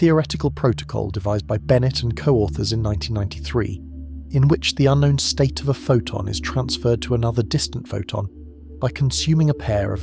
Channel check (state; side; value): identical; both; correlation 1.00